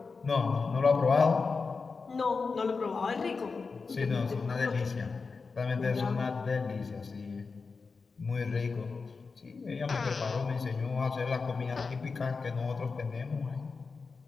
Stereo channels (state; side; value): quieter; right; 4.6 dB